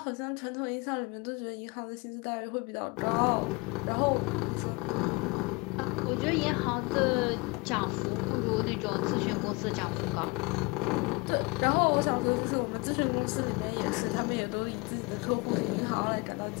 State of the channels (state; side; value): quieter; right; 26.5 dB